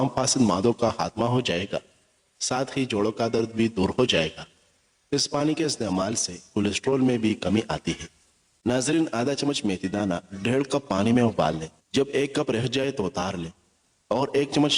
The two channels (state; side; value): identical; both; correlation 1.00